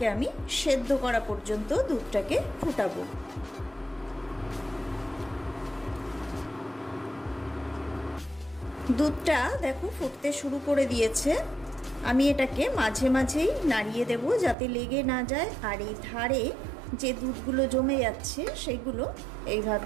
আমি সেদ্ধ করা পর্যন্ত দুধটাকে ফুটাবো। দুধটা দেখো ফুটতে শুরু করে দিয়েছে। আমি এটাকে মাঝে মাঝেই নাড়িয়ে দেব যাতে লেগে না যায়। আর এই ধারে যে দুধগুলো জমে যাচ্ছে সেগুলো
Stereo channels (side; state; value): left; drops out; at 14.6 s